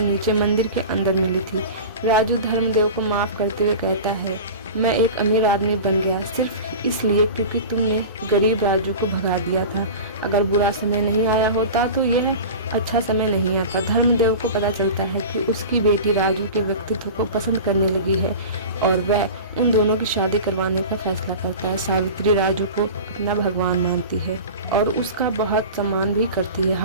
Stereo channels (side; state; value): both; inverted; correlation -0.33